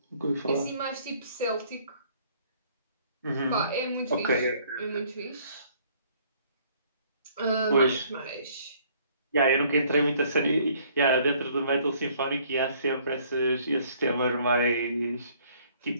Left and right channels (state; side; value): inverted; both; correlation -0.61